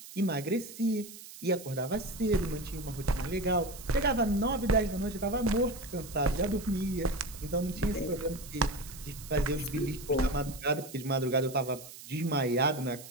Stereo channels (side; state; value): right; noise; hiss, 15 dB below the sound